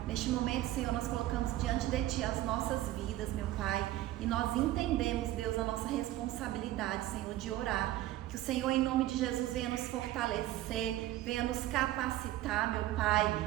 neste momento, Senhor, nós colocamos diante de Ti as nossas vidas, meu Pai, e nós entendemos, Deus, a nossa responsabilidade, Senhor, de orar. Que o Senhor, em nome de Jesus, venha nos fortalecer, venha nos capacitar, meu Pai,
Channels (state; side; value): quieter; left; 15.1 dB